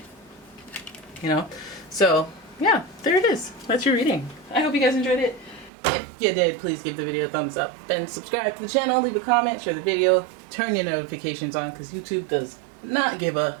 You know? So, yeah, there it is. That's your reading. I hope you guys enjoyed it. If you did, please give the video a thumbs up and subscribe to the channel, leave a comment, share the video, turn your notifications on, because YouTube does not give a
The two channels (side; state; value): left; drops out; at 5.7 s